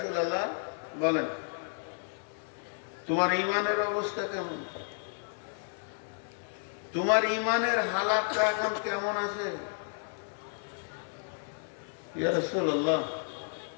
বলেন তোমার ঈমানের অবস্থা কেমন, তোমার ঈমানের হালাতটা এখন কেমন আছে? ইয়া রাসূলুল্লাহ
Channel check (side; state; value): right; silent; 56 dB below the other